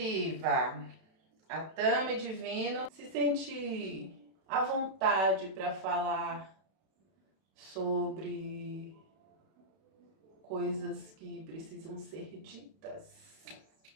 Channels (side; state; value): left; late; 31 ms